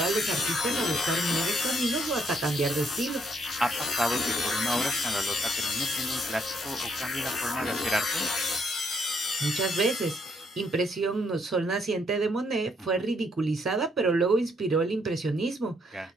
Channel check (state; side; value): normal; both; correlation 0.72